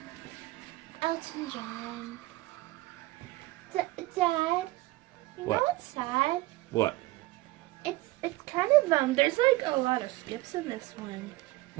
Elton John. Dad, you What? know what's sad? What? It's kind of there's like a lot of skips in this one.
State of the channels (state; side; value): quieter; left; 19.7 dB